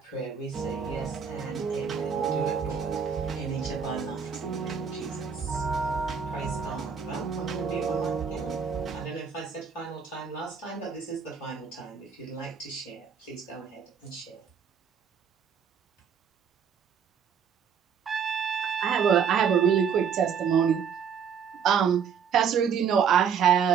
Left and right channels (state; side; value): quieter; left; 6.9 dB